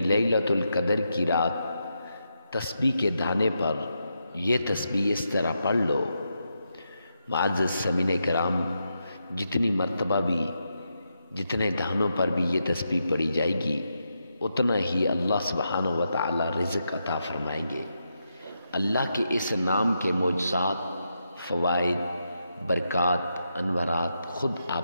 لیلۃ القدر کی رات، تسبیح کے دانے پر یہ تسبیح اس طرح پڑھ لو۔ معزز سامعین کرام، جتنی مرتبہ بھی جتنے دانوں پر بھی یہ تسبیح پڑھی جائے گی، اتنا ہی اللہ سبحانہ و تعالی رزق عطا فرمائیں گے۔ اللہ کے اس نام کے معجزات، فوائد، برکات، انوارات خود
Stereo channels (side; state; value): both; inverted; correlation -0.84